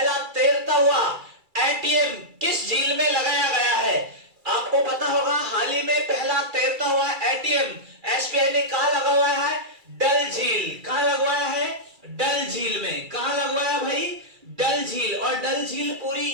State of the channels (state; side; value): late; left; 2.3 ms